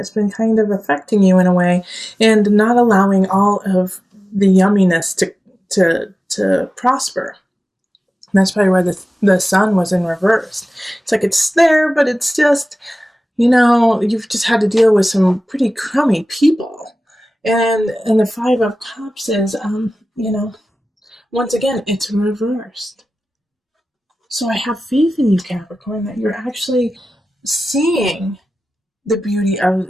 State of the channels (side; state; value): both; normal; correlation 0.96